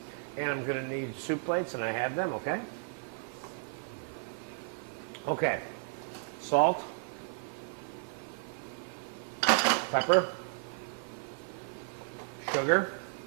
And I'm going to need soup plates, and I have them, okay? Okay. Salt. Pepper. Sugar.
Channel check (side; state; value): left; silent; digital silence